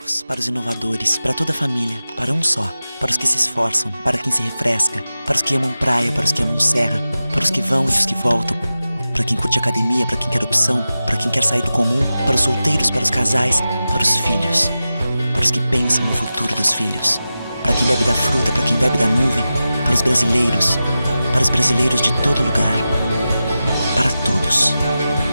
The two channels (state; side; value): inverted; both; correlation -0.93